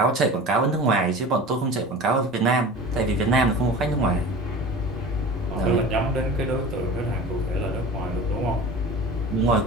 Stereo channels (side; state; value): both; normal; correlation 0.36